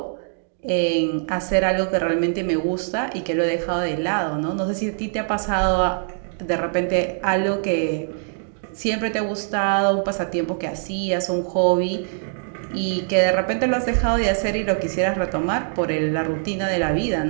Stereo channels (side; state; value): left; silent; digital silence